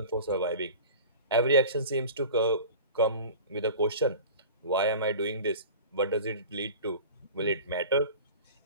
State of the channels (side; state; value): both; inverted; correlation -0.38